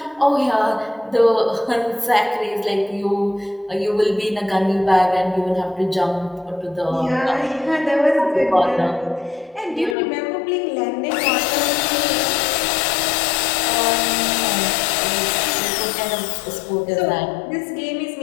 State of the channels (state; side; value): drops out; right; at 10.0 s